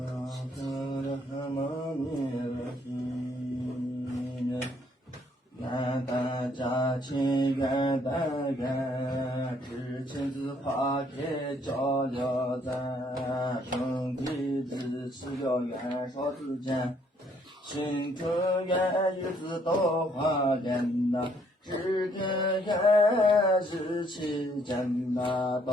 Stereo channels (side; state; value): both; normal; correlation 0.66